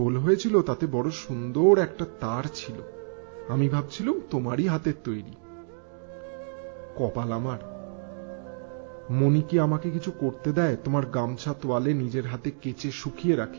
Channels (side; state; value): left; silent; digital silence